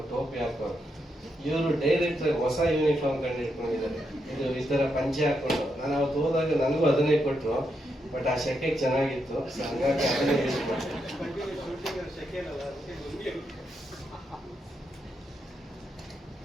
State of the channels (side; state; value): both; normal; correlation 0.82